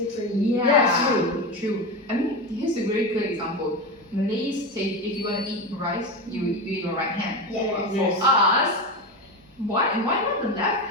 Yeah, True. I mean, here's a very good example. Malays say if you want to eat rice, you eat your right hand. Yeah. But Yes. for us, why not the left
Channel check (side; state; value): both; normal; correlation 0.19